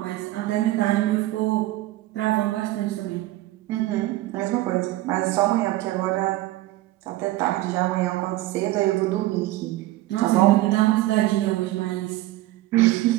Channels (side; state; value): left; quieter; 16.6 dB